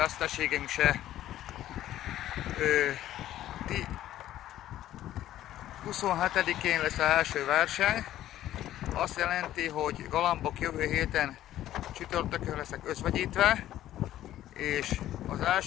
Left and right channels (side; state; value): right; quieter; 13.1 dB